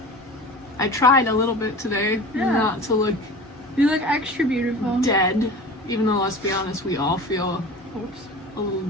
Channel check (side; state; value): both; normal; correlation 0.36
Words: I tried a little bit today not to look You look extra beautiful. dead, even though, let's be honest, we all feel a little